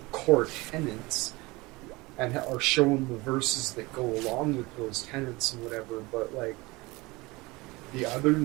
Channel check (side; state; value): left; quieter; 22.9 dB